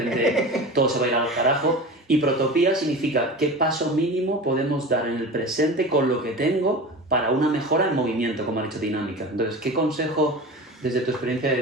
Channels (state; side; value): normal; both; correlation 0.32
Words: todo se va a ir al carajo. Y protopía significa qué paso mínimo podemos dar en el presente con lo que tengo para una mejora en movimiento, como ha dicho Dinámica. Entonces, ¿qué consejo desde tu experiencia de